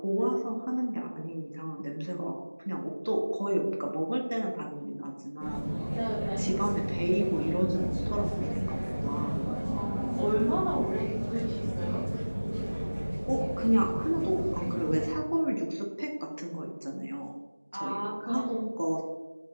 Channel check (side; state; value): both; inverted; correlation -1.00